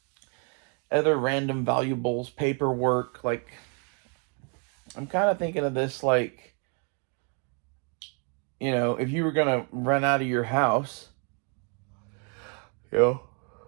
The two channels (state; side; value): quieter; left; 38.9 dB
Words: other random valuables, paperwork. Like, I'm kind of thinking of this like, if you were going to run out of your house, you know,